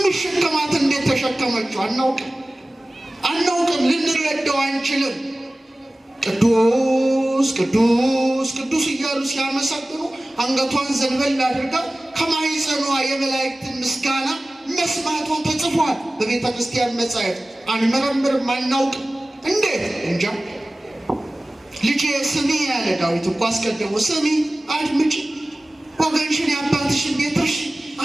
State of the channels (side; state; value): both; normal; correlation 0.97